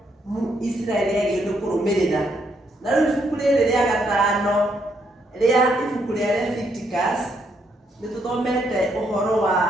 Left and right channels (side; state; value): both; normal; correlation 0.74